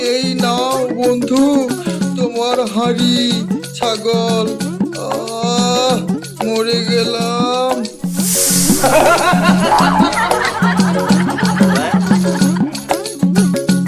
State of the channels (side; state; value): both; identical; correlation 1.00